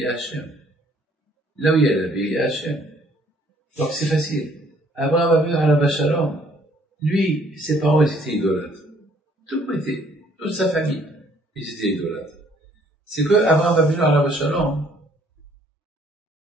y a Hachem. Là où il y a la vie, il y a Hachem. Donc c'est facile. Abraham a vu Alav Shalom. Lui, ses parents, ils étaient idolâtres. Toute sa famille, ils étaient idolâtres. C'est que Abraham a vu Alav Shalom.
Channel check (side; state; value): both; normal; correlation 0.62